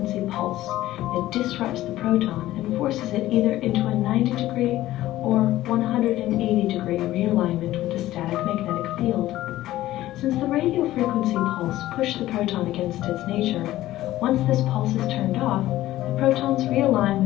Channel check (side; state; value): right; quieter; 15.2 dB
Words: pulse that disrupts the proton and forces it either into a 90-degree or 180-degree realignment with the static magnetic field. Since the radio frequency pulse pushed the proton against its nature, once this pulse is turned off, the protons realign